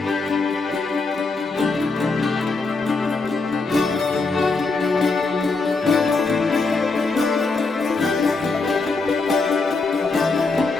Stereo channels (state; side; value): quieter; right; 3.9 dB